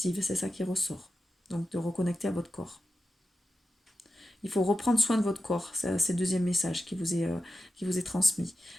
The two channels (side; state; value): both; normal; correlation 0.91